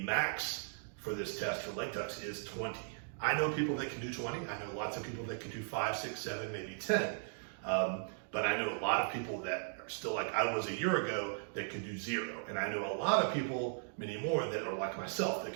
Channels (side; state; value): left; silent; digital silence